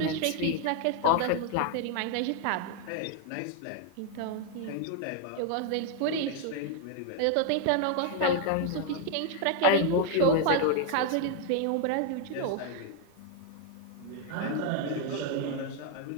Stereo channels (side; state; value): both; different; correlation 0.00